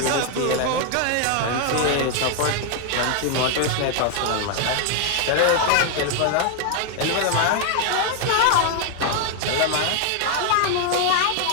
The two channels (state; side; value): different; both; correlation 0.00